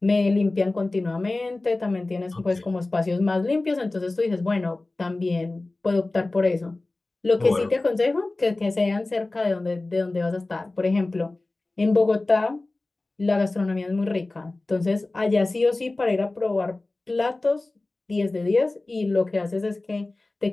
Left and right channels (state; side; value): quieter; right; 3.0 dB